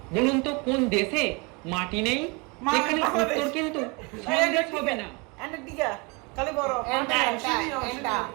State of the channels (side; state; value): left; quieter; 29.5 dB